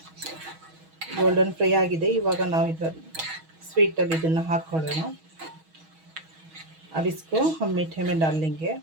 गोल्डन फ्राई आಗಿದೆ। ಇವಾಗ ನಾವು ಇದರಲ್ಲಿ ಸ್ವೀಟಲ್ಲಿ ಇದನ್ನು ಹಾಕ್ಕೊಳ್ಳೋಣ। अब इसको हम मीठे में डाल लेंगे।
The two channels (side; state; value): left; late; 6.3 ms